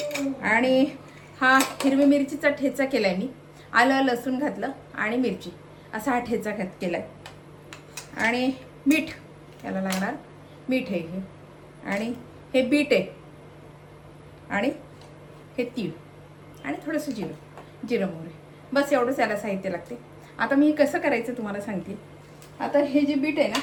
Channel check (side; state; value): both; identical; correlation 1.00